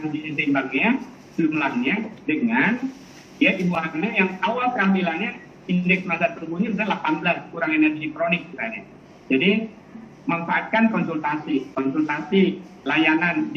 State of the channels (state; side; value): identical; both; correlation 1.00